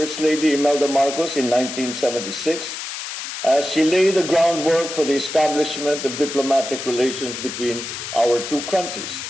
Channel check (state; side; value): noise; left; hiss, 7 dB below the sound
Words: Lady Imelda Marcos, in 1976, as she laid the groundwork for the establishment of diplomatic relations between our two countries.